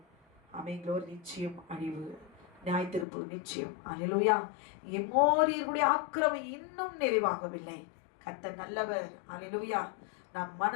அமைங்களோர் நிச்சயம் அழிவு, நியாய தீர்ப்பு நிச்சயம். அல்லேலூயா. எமோரியர்களுடைய ஆக்கிரமம் இன்னும் நிறைவாகவில்லை. கர்த்தர் நல்லவர். அல்லேலூயா. நாம்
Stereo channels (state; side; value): drops out; right; at 3.1 s